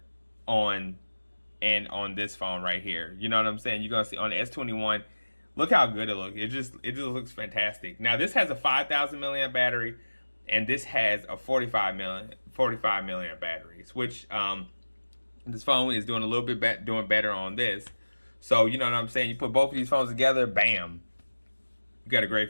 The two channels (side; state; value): both; inverted; correlation -1.00